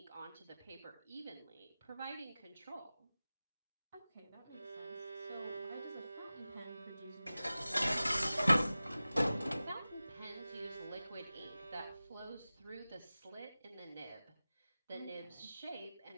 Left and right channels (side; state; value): both; inverted; correlation -0.96